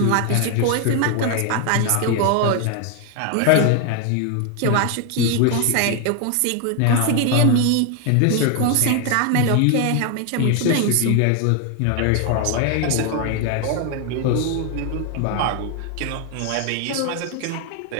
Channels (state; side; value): different; both; correlation 0.00